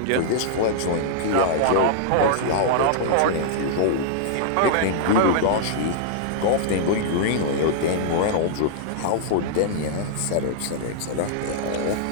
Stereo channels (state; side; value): different; both; correlation -0.01